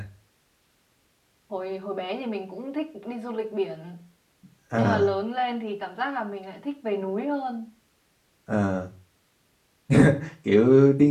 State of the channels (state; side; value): identical; both; correlation 1.00